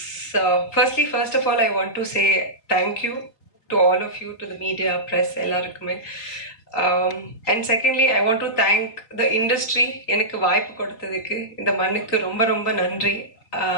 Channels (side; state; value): right; late; 3.6 ms